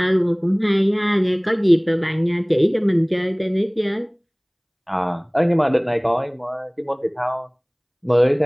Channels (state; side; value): identical; both; correlation 1.00